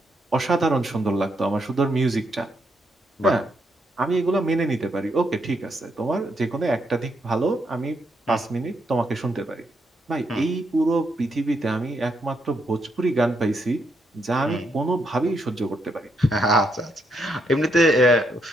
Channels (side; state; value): both; normal; correlation 0.77